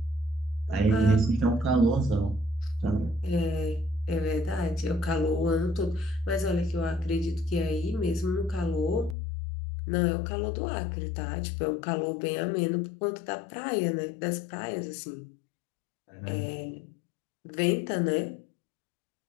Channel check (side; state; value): right; drops out; at 9.2 s